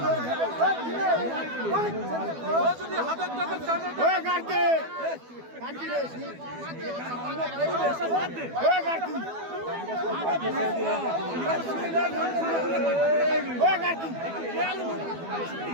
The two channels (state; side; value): late; left; 12 ms